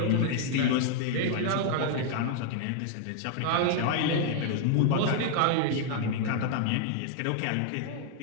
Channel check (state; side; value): different; both; correlation 0.00